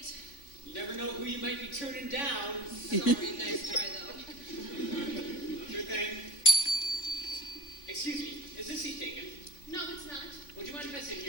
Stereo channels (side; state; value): right; late; 3.5 ms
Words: You never know who you might be turning down. Sorry, nice try though. Sure thing. Excuse me, is this seat taken? No, it's not. Would you mind if I sit